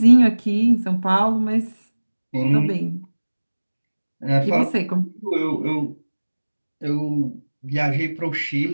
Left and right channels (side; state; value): both; inverted; correlation -1.00